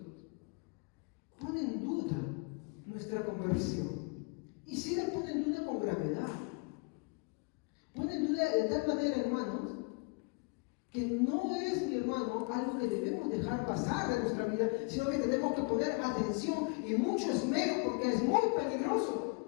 pone en duda nuestra conversión. Y si la pone en duda con gravedad. Pone en duda de tal manera, hermanos, que no es, mi hermano, algo que debemos dejar pasar de nuestra vida, sino que tenemos que poner atención y mucho esmero, porque es muy peligroso.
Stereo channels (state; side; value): quieter; right; 32.0 dB